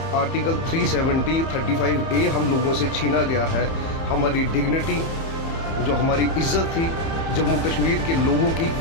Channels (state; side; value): late; right; 30 ms